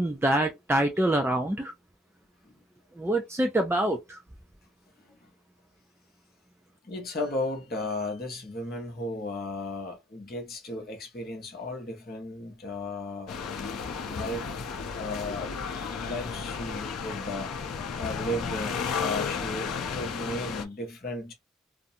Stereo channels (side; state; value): both; normal; correlation 0.58